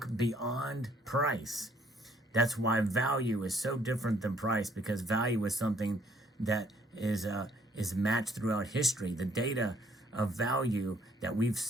beyond price. That's why value is so different than price, because value is something that is matched throughout history. The data of value that we've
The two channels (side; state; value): both; normal; correlation 0.64